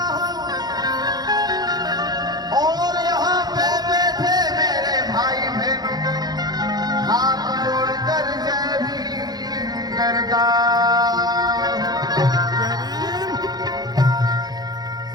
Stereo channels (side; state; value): left; late; 0.19 ms